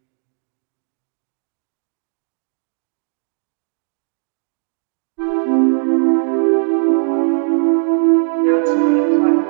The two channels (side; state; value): left; silent; digital silence